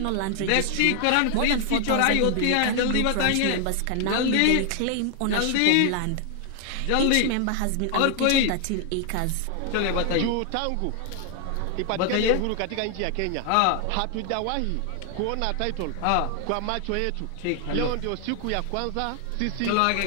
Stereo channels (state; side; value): different; both; correlation 0.00